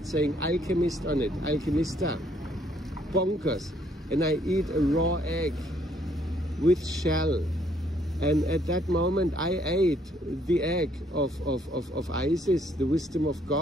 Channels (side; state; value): both; normal; correlation 0.67